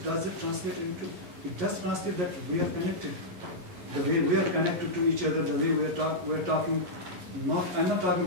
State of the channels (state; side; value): late; left; 11 ms